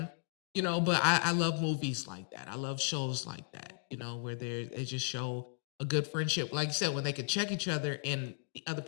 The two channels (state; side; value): silent; right; digital silence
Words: You know, but I love movies like that. I love shows like that, you know, where they just show a good friendship. Like you said, when they could check each other and the other